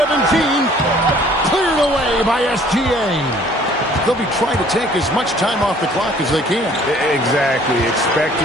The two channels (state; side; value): normal; both; correlation 0.56